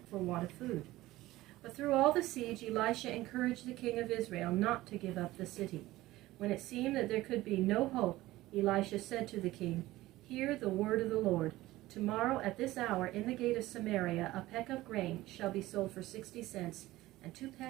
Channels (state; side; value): quieter; left; 17.3 dB